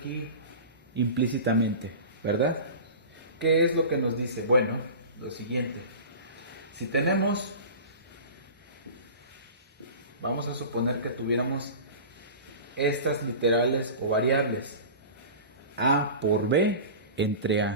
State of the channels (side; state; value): both; inverted; correlation -0.34